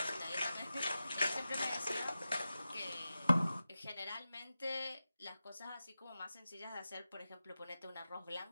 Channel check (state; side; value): inverted; both; correlation -0.93